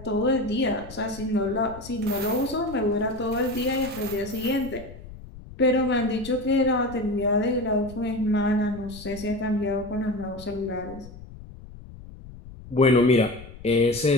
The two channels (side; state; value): left; noise; rumble, 16 dB below the sound